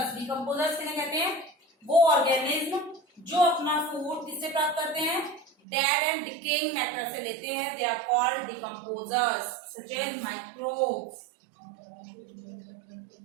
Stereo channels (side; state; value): left; drops out; at 5.5 s